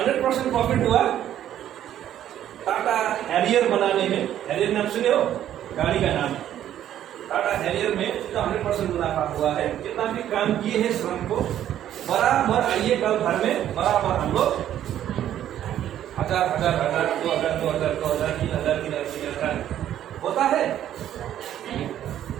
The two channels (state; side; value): quieter; left; 11.3 dB